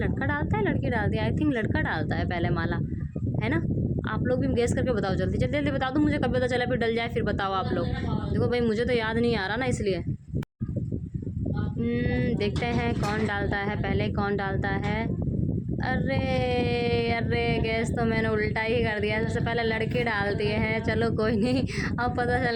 डालता है लड़की डालती है? आई थिंक लड़का डालता है पहले माला, है ना? आप लोग भी गेस करके बताओ, जल्दी जल्दी जल्दी बता दो मुझे, कब पता चला फिर डल जाए, फिर बताओ आप लोग। देखो भाई मुझे तो याद नहीं आ रहा ना, इसलिए देखते हैं कौन डालता है पहले, कौन डालता है। अरे अरे गैस तो मैंने उल्टा ही कर दिया, सबसे पहले लड़के डाल दिए हैं। चलो कोई नहीं, अब पता चल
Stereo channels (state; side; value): identical; both; correlation 1.00